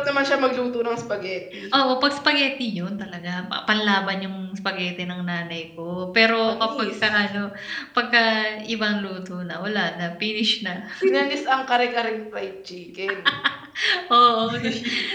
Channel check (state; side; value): identical; both; correlation 1.00